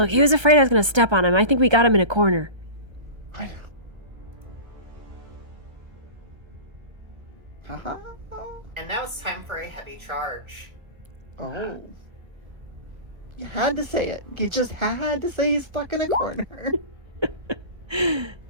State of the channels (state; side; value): late; left; 1.3 ms